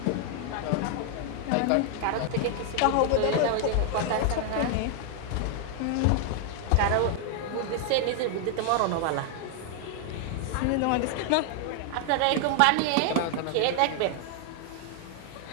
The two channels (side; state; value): both; different; correlation 0.00